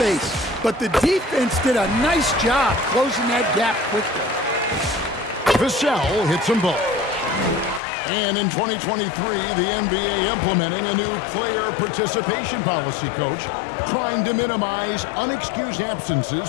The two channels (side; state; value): right; drops out; at 7.8 s